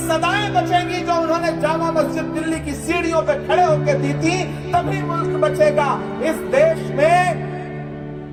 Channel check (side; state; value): both; identical; correlation 1.00